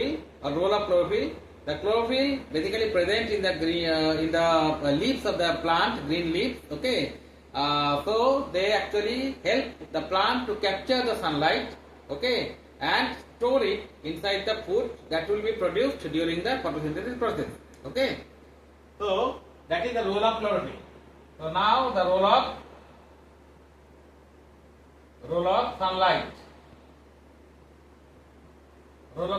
or role of chlorophyll? The chlorophyll basically present in the green, leaves of the plant, green leaves. Okay, so they actually help the plant to capture the sunlight. Okay, and store it inside the food that will be produced during the photosynthesis process. Okay, so that is the role of chlorophyll. So now the role of sunlight. Role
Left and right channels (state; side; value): identical; both; correlation 1.00